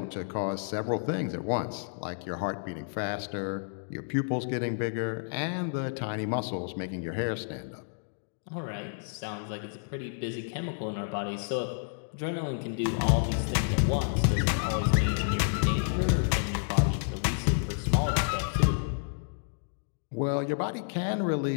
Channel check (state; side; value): silent; right; digital silence